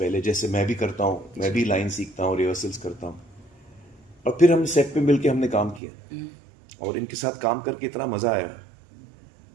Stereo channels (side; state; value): left; drops out; at 5.8 s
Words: जैसे मैं भी करता हूँ, मैं भी लाइन सीखता हूँ, रिहर्सल्स करता हूँ और फिर हम सेट पे मिलके हमने काम किया और इनके साथ काम करके इतना मजा आया।